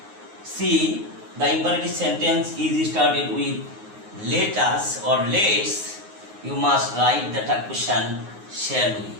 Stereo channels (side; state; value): left; late; 9.5 ms